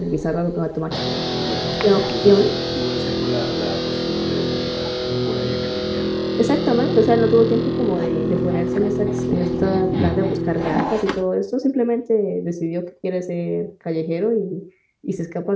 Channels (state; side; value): identical; both; correlation 1.00